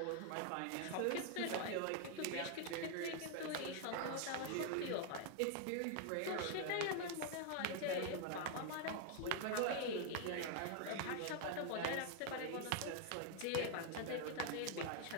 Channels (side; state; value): both; different; correlation 0.00